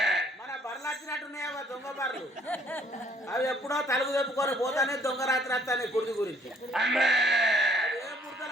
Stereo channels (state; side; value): normal; both; correlation 0.61